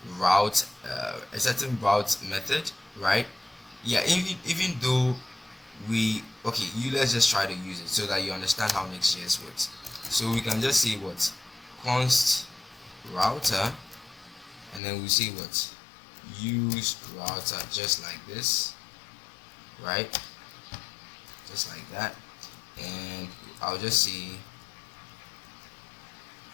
route, method, right? Yeah, even though let's just try to use it so that you understand how NextJS works. So we can just say what? Const router, and then we say what? Use router, just like this, right? Just like that. And I'll just say,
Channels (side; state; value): right; drops out; at 14.8 s